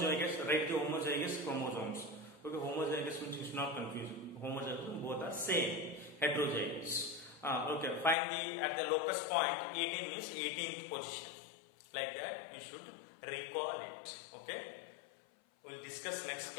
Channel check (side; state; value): right; drops out; at 8.2 s